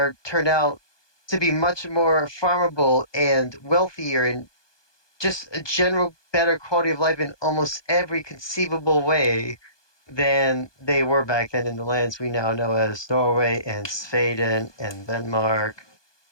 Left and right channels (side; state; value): right; late; 1.2 ms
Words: turned out to be much more farmable and wealthier, and just a general better quality of life in almost every conceivable way than they were back then in the lands we now know as Norway and Sweden and Denmark.